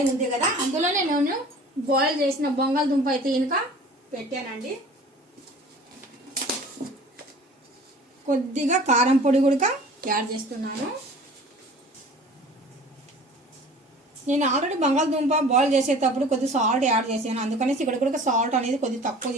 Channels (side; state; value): both; normal; correlation 0.45